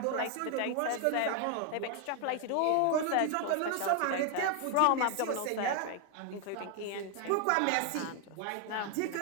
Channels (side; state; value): both; different; correlation 0.01